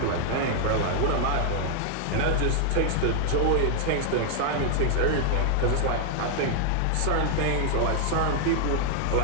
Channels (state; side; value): different; both; correlation 0.00